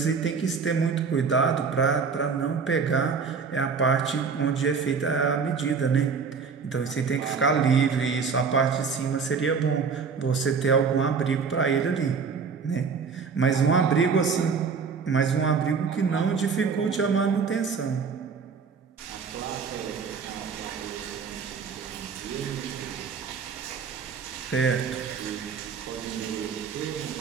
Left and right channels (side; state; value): left; quieter; 5.6 dB